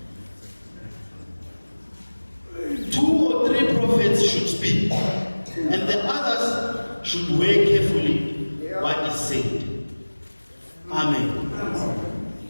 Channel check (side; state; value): both; inverted; correlation -1.00